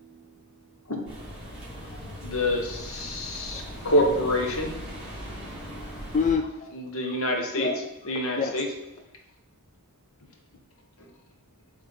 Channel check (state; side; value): normal; both; correlation -0.03